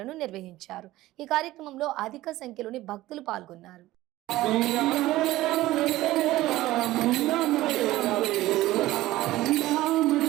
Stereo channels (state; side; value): quieter; left; 16.6 dB